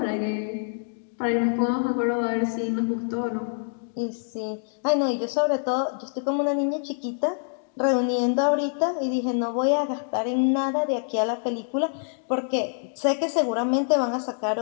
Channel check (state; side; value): silent; right; digital silence